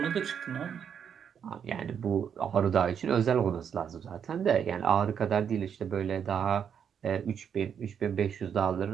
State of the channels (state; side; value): quieter; left; 7.9 dB